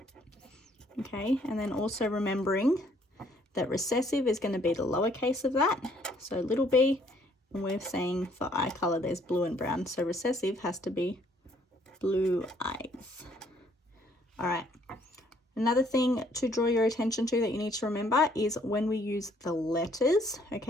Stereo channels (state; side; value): normal; both; correlation 0.64